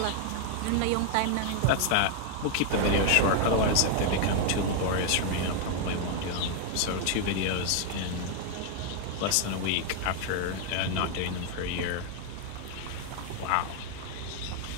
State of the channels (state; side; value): different; both; correlation 0.00